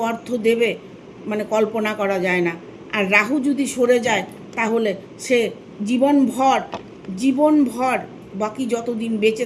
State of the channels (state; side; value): identical; both; correlation 1.00